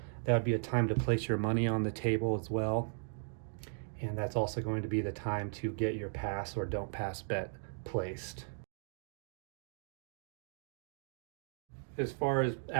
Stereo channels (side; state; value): left; silent; digital silence